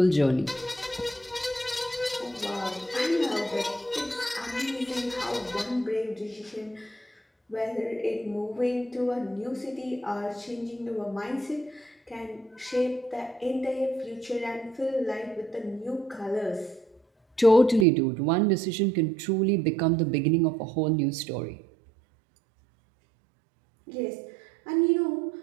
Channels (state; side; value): drops out; left; at 17.9 s